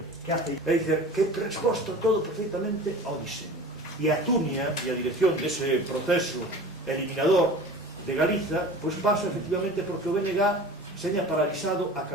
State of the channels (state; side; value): normal; both; correlation 0.39